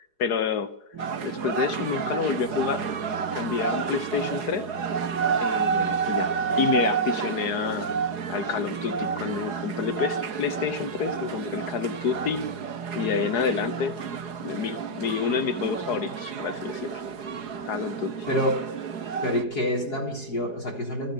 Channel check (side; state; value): right; late; 4.8 ms